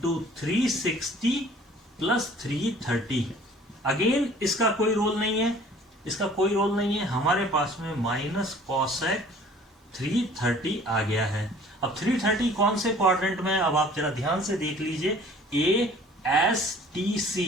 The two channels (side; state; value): both; normal; correlation 0.51